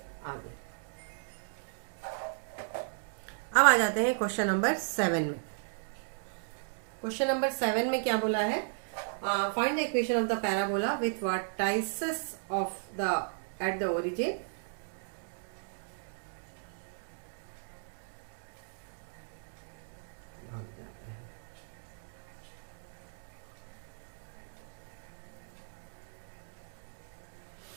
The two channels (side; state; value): left; silent; digital silence